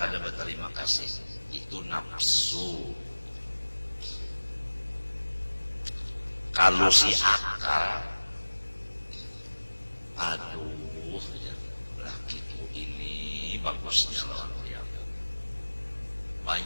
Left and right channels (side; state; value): both; inverted; correlation -1.00